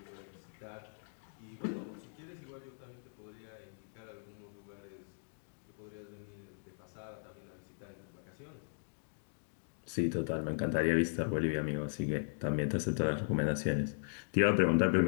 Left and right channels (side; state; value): right; silent; digital silence